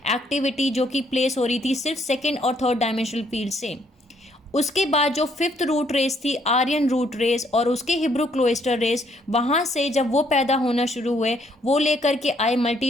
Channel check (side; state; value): both; normal; correlation 0.68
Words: एक्टिविटी जो कि प्लेस हो रही थी सिर्फ सेकेंड और थर्ड डायमेंशनल फील्ड से। उसके बाद जो फिफ्थ रूट रेस थी आर्यन रूट रेस और उसके हिब्रू क्लोस्टर रेस, वहाँ से जब वो पैदा होना शुरू हुए, वो लेकर के आए